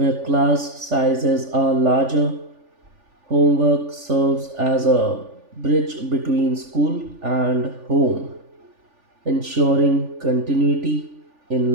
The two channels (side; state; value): left; late; 3.4 ms